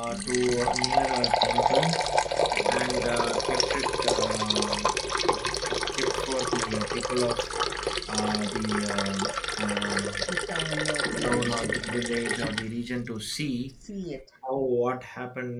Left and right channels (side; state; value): both; identical; correlation 1.00